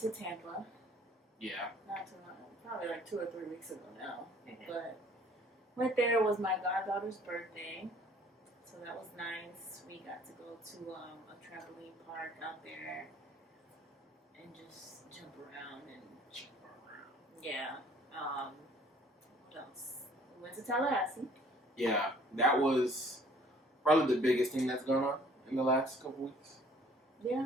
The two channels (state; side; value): normal; both; correlation 0.56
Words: Tampa. Yeah. Not too long, probably 2 or 3 weeks ago now. Mm-hmm. But went there, it was my goddaughter's birthday. So that was nice. We got to go to a trampoline park out there and just jump around. Yeah. What else? We went to Tallahassee. Yeah, that was probably the biggest thing that's going on in the last couple weeks.